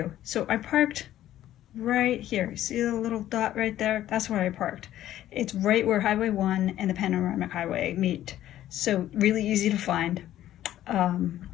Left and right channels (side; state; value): right; quieter; 12.9 dB